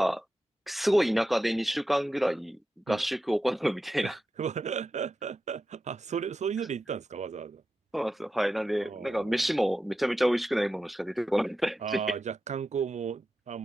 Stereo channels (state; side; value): normal; both; correlation 0.91